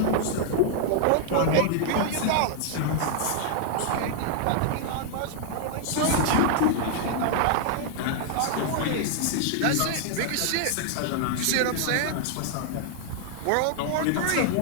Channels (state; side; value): different; both; correlation 0.00